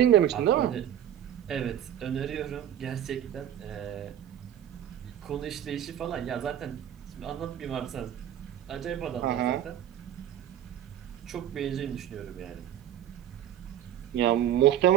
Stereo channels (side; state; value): left; quieter; 10.8 dB